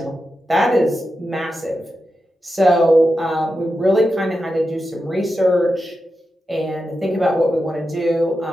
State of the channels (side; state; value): both; normal; correlation 0.89